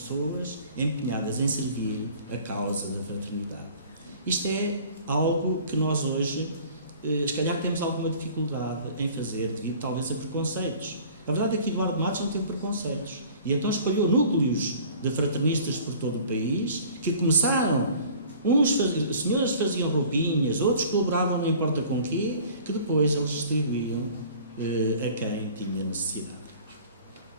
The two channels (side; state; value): both; inverted; correlation -0.48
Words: empenhadas em servir a causa da fraternidade. Isto é algo que nós hoje, se calhar, temos alguma dificuldade em fazer, devido talvez a preconceitos. A verdade é que Eduardo Matos não teve preconceitos. E então espalhou núcleos de fraternistas por todo o país, que começaram, senhores faziam roupinhas, outros colaboravam não importa com quê, que depois eles distribuíam a quem tinha necessidade.